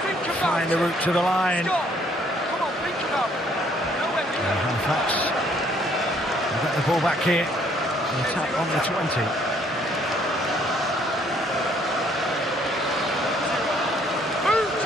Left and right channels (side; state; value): both; normal; correlation 0.64